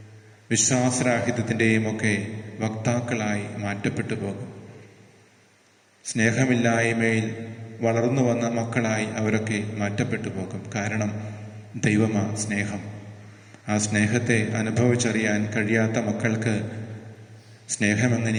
വിശ്വാസരാഹിത്യത്തിൻ്റെയും ഒക്കെ വക്താക്കളായി മാറ്റപ്പെട്ടു പോകും. സ്നേഹമില്ലായ്മയിൽ വളർന്നു വന്ന മക്കളായി അവരൊക്കെ മാറ്റപ്പെട്ടു പോകും. കാരണം ദൈവമാ സ്നേഹം. ആ സ്നേഹത്തെ അനുഭവിച്ചറിയാൻ കഴിയാത്ത മക്കൾക്ക്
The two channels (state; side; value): identical; both; correlation 1.00